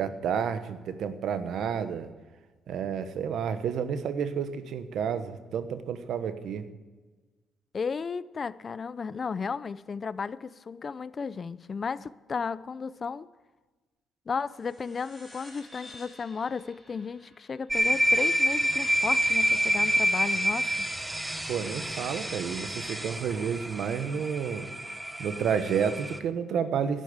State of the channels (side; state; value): both; normal; correlation 0.82